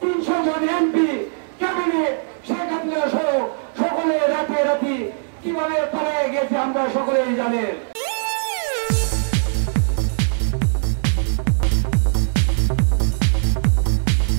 জন এমপি, ক্যাবিনেট, শেখ হাসিনা সহ সকলে রাতে রাতে কিভাবে পালিয়ে গেছে আমরা সকলেই জানেন।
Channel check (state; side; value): silent; left; digital silence